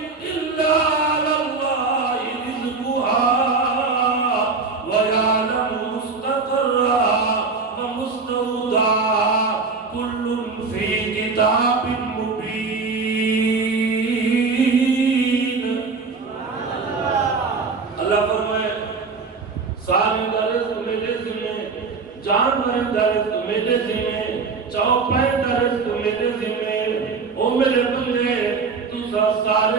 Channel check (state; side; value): quieter; left; 4.5 dB